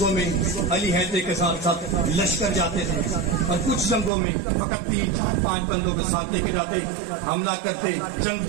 میں علی حیدر کے ساتھ ساتھ لشکر جاتے تھے، اور کچھ جنگوں میں فقط 3 4 5 بندوں کے ساتھ لے کے جاتے، حملہ کرتے، جنگ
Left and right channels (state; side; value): drops out; left; at 4.1 s